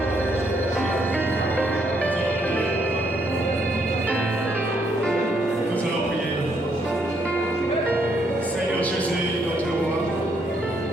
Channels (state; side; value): normal; both; correlation 0.73